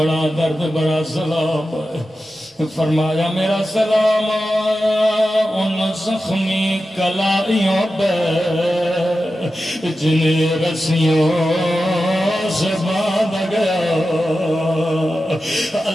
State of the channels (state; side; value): normal; both; correlation 0.92